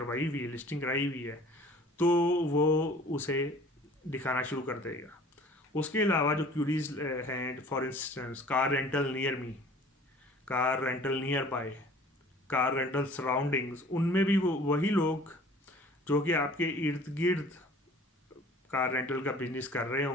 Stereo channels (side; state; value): both; normal; correlation 0.48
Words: हुई है, लिस्टिंग कराई हुई है, तो वो उसे दिखाना शुरू कर देगा। उसके अलावा जो क्यूरीज हैं, for instance car rental near me, car rental near by, car rental surroundings, उनमें भी वो वही लोग जो कि आपके इर्द गिर्द कार रेंटल का बिजनेस कर रहे